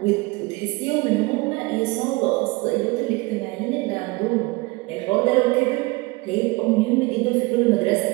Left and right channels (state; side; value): quieter; left; 24.2 dB